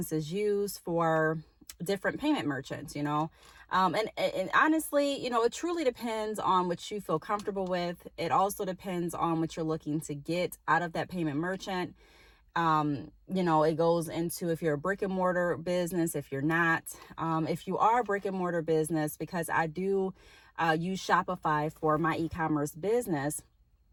use for different payment merchants, and honestly, it truly depends on what you feel comfortable with. It also depends on what you're looking to get out of that payment merchant. It goes into if you're a brick and mortar business, if you're not, if you are a brick and mortar business, because I do use Shopify for my e-commerce business,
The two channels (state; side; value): identical; both; correlation 1.00